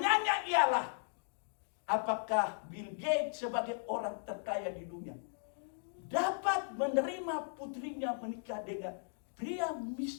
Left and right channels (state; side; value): silent; right; digital silence